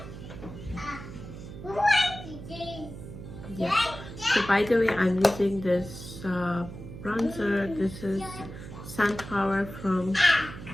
Yeah. So by the way, I'm using this bronzer. This is Sunpower from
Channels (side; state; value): right; noise; hum, 12 dB below the sound